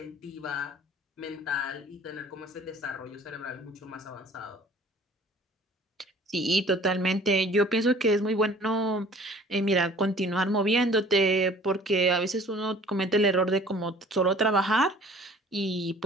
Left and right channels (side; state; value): both; normal; correlation 0.51